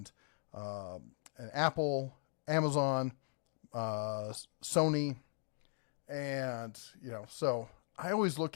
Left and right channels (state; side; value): silent; right; digital silence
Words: Apple, Amazon, Sony, and so I always